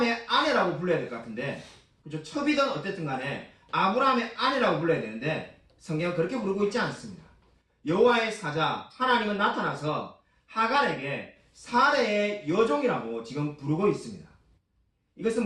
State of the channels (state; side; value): identical; both; correlation 1.00